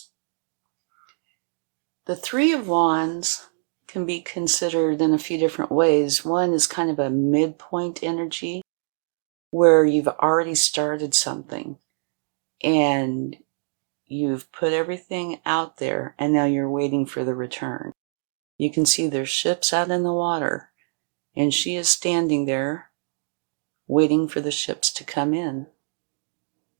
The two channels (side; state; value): left; silent; digital silence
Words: The Three of Wands can be considered in a few different ways. One is kind of a midpoint energy, where you've already started something and you've put everything out there, and now you're waiting for the return. You can see there's ships out in the water, and she is standing there waiting for the ships to come in.